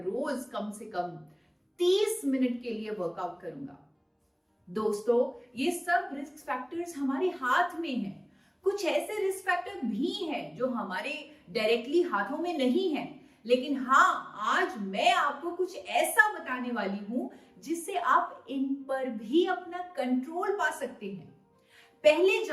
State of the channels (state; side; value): identical; both; correlation 1.00